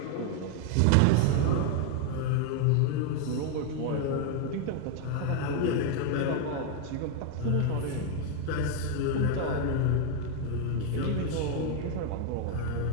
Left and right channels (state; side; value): different; both; correlation 0.01